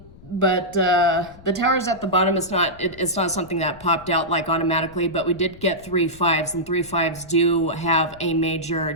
the towers at the bottom is it's not something that popped out like automatically, but we did get 3 5s, and 3 5s do have a major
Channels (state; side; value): noise; left; rumble, 21 dB below the sound